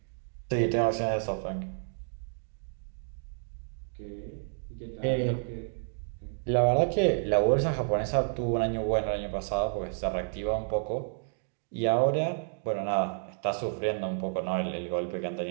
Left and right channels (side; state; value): left; silent; digital silence